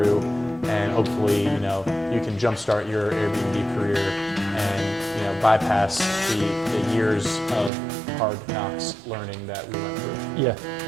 and hopefully, you can jumpstart your Airbnb career and, bypass the years of hard knocks learning that we went through. Yeah,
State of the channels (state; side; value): drops out; left; at 7.7 s